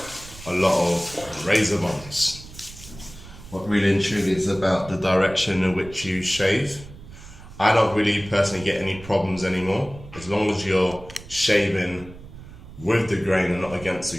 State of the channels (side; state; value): right; noise; rumble, 17 dB below the sound